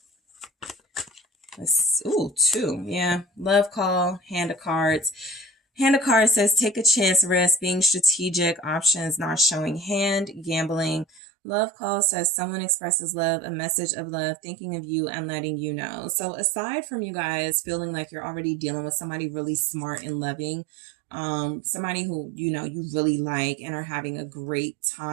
Ooh, 2. Yeah. Love call, hand of cards. Hand of cards says, take a chance, risk, being strategic, options, not showing hand, gambling. Love call says, someone expresses love, a message of love, thinking of you and letting you know. So aside from you guys feeling like you're already dealing with somebody really smart and loving, somebody who, you really like and are having a great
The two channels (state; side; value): drops out; left; at 11.2 s